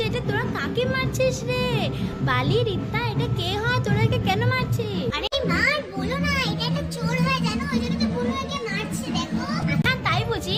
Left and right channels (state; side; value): identical; both; correlation 1.00